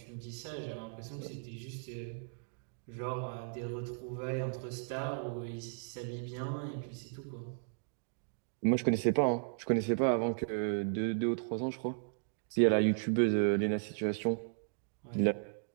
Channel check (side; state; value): left; silent; digital silence